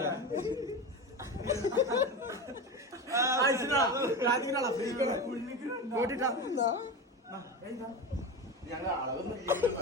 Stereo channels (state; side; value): normal; both; correlation 0.23